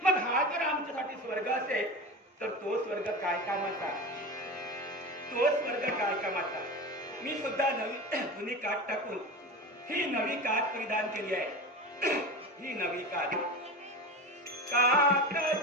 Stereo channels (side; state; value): both; normal; correlation 0.27